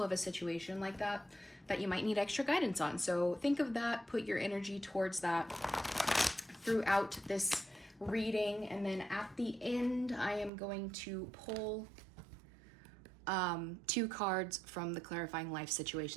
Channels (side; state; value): left; drops out; at 10.5 s